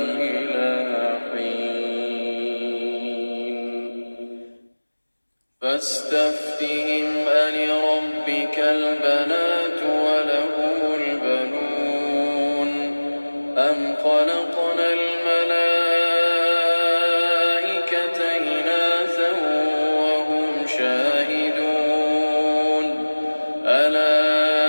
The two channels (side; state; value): both; inverted; correlation -1.00